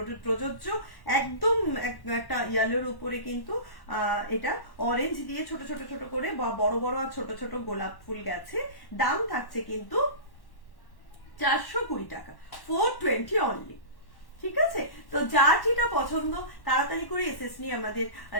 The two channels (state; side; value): late; right; 1.1 ms